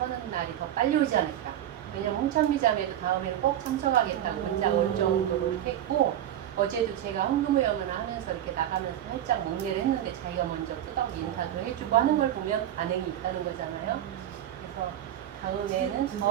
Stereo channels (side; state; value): left; quieter; 11.6 dB